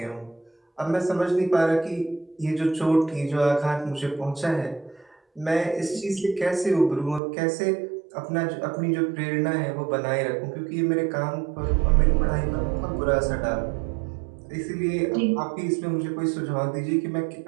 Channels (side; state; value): left; drops out; at 7.2 s